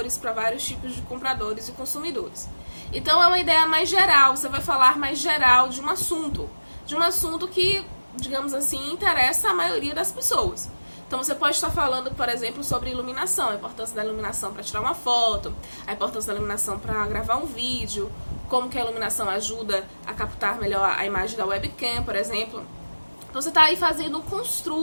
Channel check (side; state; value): both; inverted; correlation -1.00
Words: para vários tipos de compradores e consumidores. Então é uma ideia mais geral, você vai falar mais geral de um assunto que, digamos assim, interessa a maioria das pessoas. Então você pode estar falando, por exemplo, sobre iluminação, a importância da iluminação para tirar uma foto, a importância da iluminação para gravar um vídeo, como que a iluminação ajuda a captar melhor a imagem da webcam, por exemplo. Então você está aí fazendo um